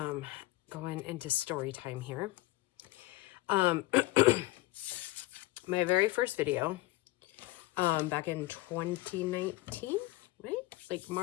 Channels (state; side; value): quieter; right; 18.7 dB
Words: going into story time here. My very first video, back in 2019, right? Like